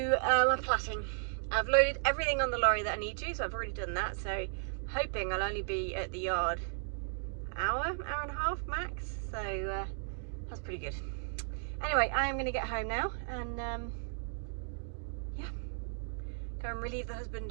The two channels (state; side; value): silent; left; digital silence